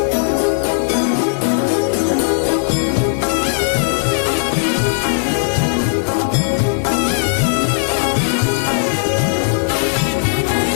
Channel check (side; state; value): right; silent; 68 dB below the other